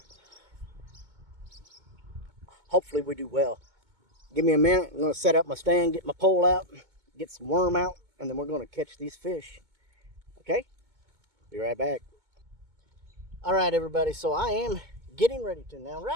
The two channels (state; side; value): late; left; 2.2 ms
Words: Hopefully we do well. Give me a minute. I'm going to set up my stand, get my pole out, get some worm out, and then we're going to catch these fish. Okay? Be right back. All right, everybody. So I am getting ready to. Now,